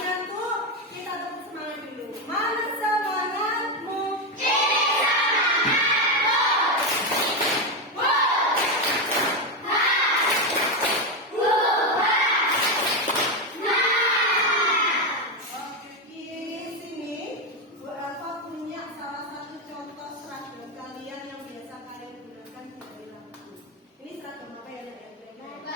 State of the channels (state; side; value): normal; both; correlation 0.09